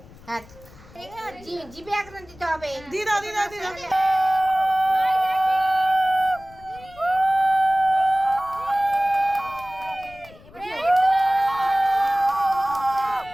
জিভে একদম দিতে হবে। দিদা দিদা দিদা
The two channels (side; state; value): left; noise; rumble, 22 dB below the sound